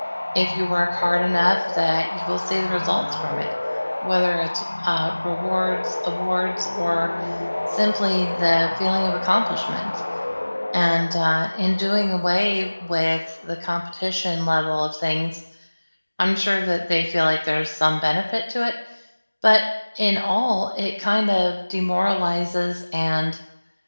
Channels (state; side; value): inverted; both; correlation -1.00